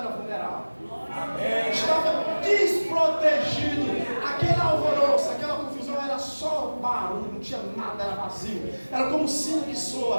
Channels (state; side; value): inverted; both; correlation -1.00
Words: vulnerável. Estava desprotegido. Aquele alvoroço, aquela confusão era só barulho, não tinha nada, era vazio. Era como um sino que